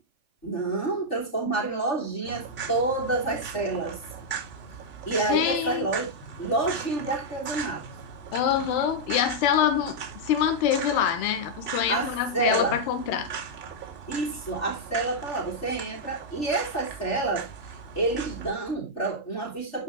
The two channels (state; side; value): late; right; 3.4 ms